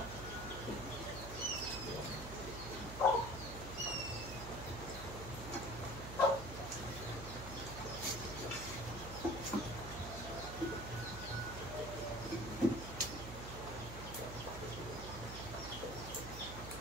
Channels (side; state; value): right; noise; hum, 8 dB below the sound